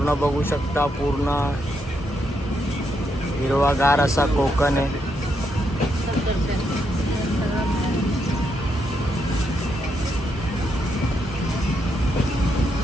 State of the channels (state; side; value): normal; both; correlation 0.79